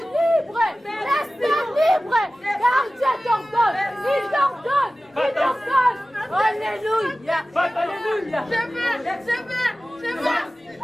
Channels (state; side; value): normal; both; correlation 0.96